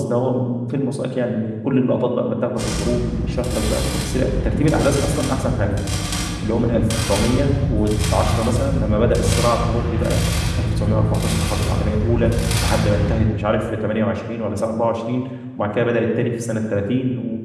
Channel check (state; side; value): identical; both; correlation 1.00